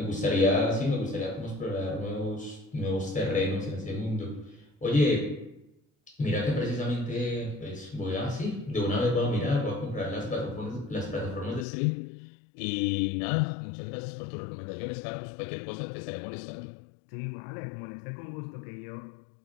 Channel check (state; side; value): drops out; right; at 11.7 s